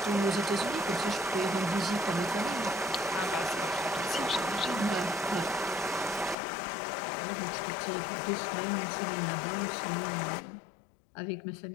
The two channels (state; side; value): drops out; right; at 6.4 s